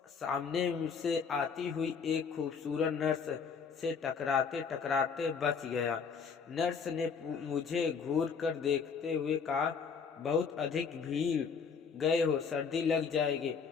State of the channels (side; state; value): right; quieter; 6.0 dB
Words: सामने से आती हुई एक खूबसूरत नर्स से टकराते टकराते बच गया। नर्स ने मुझे घूर कर देखते हुए कहा, बहुत अधिक भीड़ गए हो, सर्दी लग जाएगी।